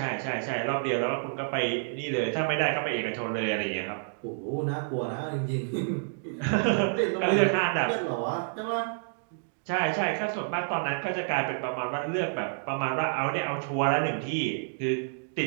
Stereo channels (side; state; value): left; silent; digital silence